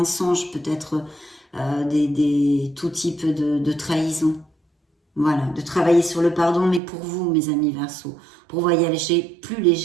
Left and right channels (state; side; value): drops out; left; at 6.8 s